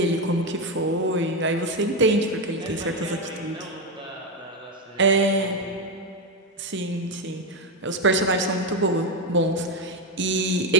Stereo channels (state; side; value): normal; both; correlation 0.08